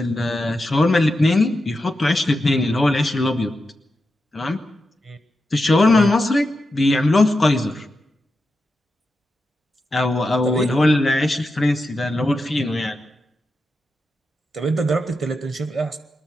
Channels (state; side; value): normal; both; correlation 0.89